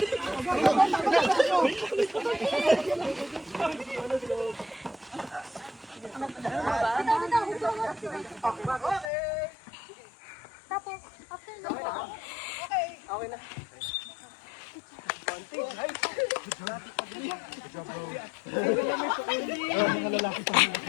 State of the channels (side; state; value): right; drops out; at 9.1 s